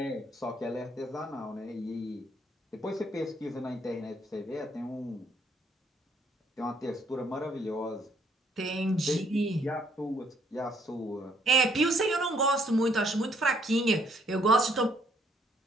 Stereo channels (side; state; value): both; normal; correlation 0.67